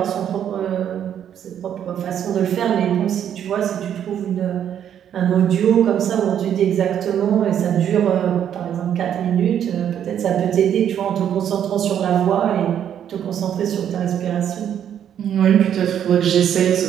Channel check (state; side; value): quieter; left; 9.5 dB